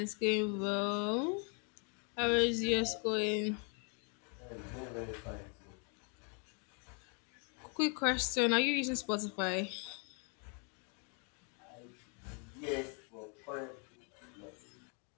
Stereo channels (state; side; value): quieter; right; 37.3 dB